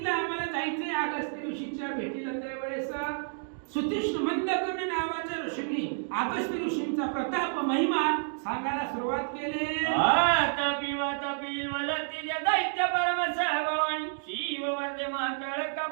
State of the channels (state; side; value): silent; left; digital silence